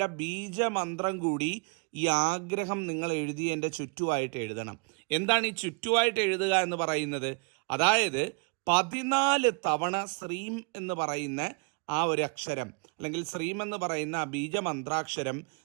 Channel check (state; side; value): quieter; left; 35.3 dB